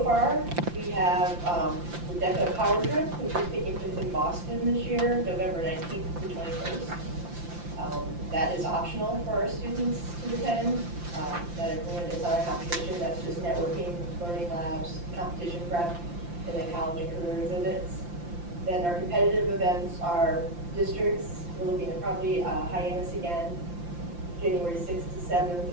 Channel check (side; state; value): left; late; 5.8 ms